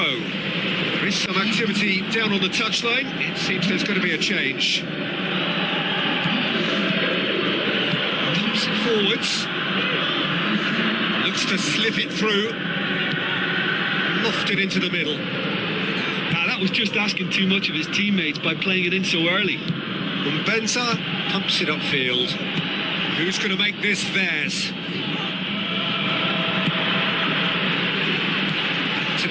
There is some activity down on the touchline. It seems there's going to be a change. Pumps it forwards. Looks to slip it through. Lofted into the middle. That was just asking too much of his teammates by playing it in so early. Mbenza pumps it upfield. Who's going to make this theirs? To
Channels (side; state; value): both; identical; correlation 1.00